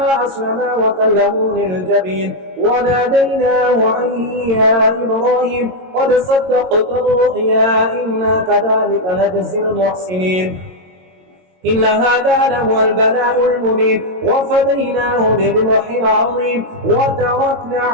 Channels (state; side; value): late; left; 22 ms